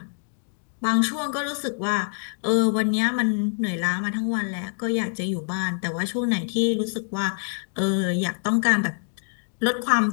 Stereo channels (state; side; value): silent; right; digital silence